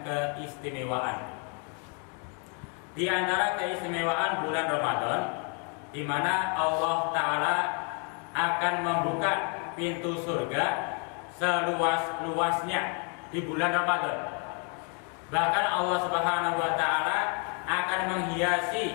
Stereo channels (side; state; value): right; quieter; 38.7 dB